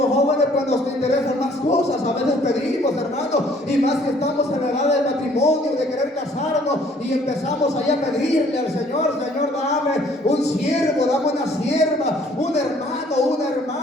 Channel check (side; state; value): both; normal; correlation 0.59